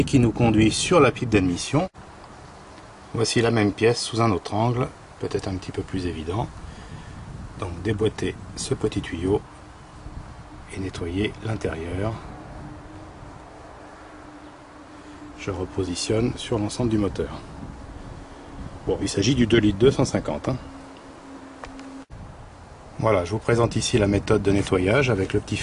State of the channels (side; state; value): both; identical; correlation 1.00